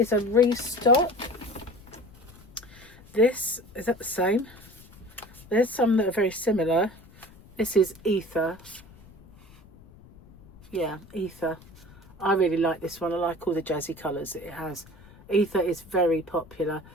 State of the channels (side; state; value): left; noise; rumble, 23 dB below the sound